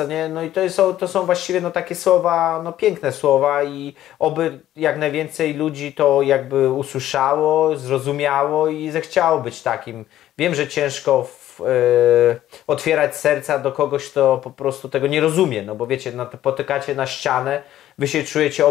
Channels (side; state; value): right; quieter; 12.9 dB